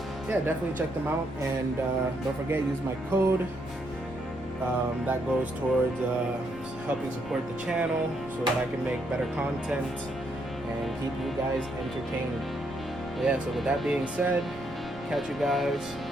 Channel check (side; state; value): left; noise; rumble, 17 dB below the sound